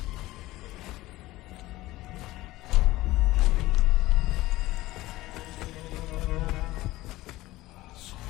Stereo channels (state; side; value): quieter; right; 17.8 dB